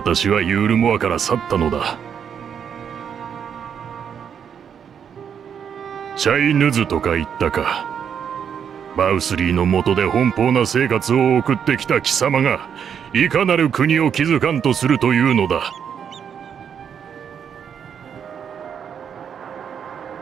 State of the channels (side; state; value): left; quieter; 7.8 dB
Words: はユールモアから去ったのだ。チャイヌズとか言ったか。バウスリーの下で奔放な生活を送ってきた貴様が、いかなる国を築かんとするというのだ。